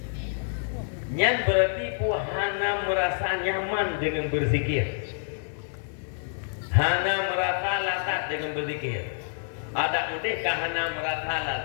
Nyan berarti puhana merasa nyaman dengan berzikir. hana merasa lazat dengan berzikir. Ada mungkin hana merasa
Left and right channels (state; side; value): silent; right; 55 dB below the other